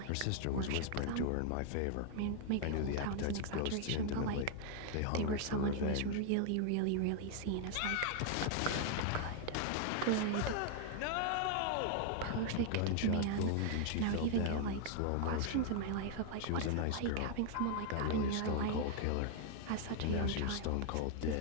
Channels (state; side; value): different; both; correlation 0.00